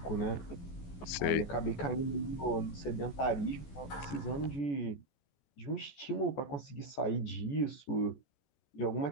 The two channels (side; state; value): right; late; 14 ms